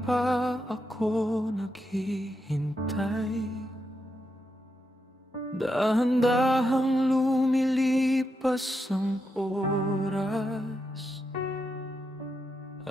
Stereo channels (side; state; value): both; normal; correlation 0.84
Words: pa ako naghihintay. Dahan-dahang lumilipas ang oras.